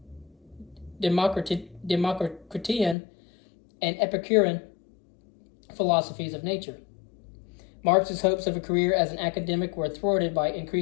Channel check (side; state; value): right; drops out; at 3.0 s